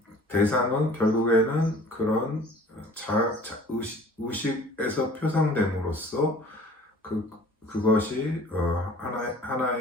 대상은 결국에는 그런 의식에서 표상됨으로써 그것이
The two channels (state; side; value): normal; both; correlation 0.48